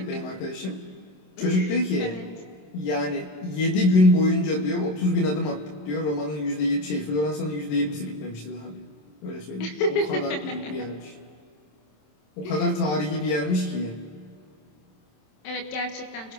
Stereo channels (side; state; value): right; late; 27 ms